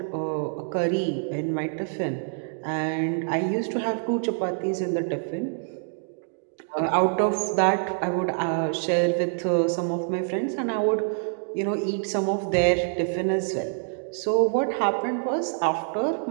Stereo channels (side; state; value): left; silent; digital silence